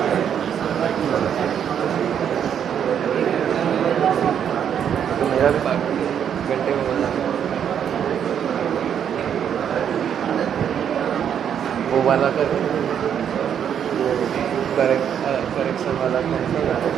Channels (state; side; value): quieter; left; 8.6 dB